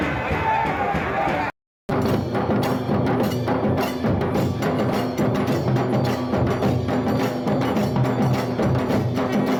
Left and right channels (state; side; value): identical; both; correlation 1.00